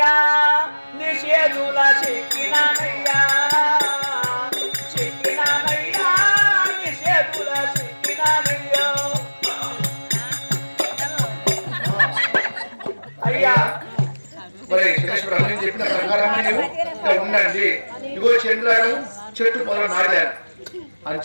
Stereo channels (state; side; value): inverted; both; correlation -1.00